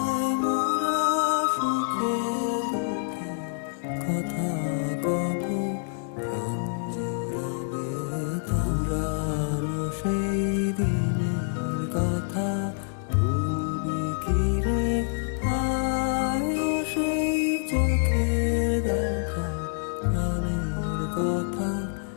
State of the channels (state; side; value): silent; right; 60 dB below the other